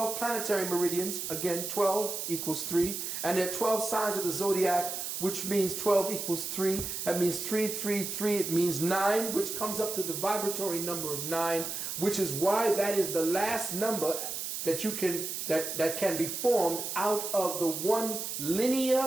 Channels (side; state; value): right; noise; hiss, 4 dB below the sound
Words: planetary meridians. Again, 12 equals 3. And there are 12 signs of the zodiac, which means 12 equals 3. That means 3, 3, 3. It means 9, which comes up to the vibratory number of 9, which is why that is the last number that you can that can be formed out of the one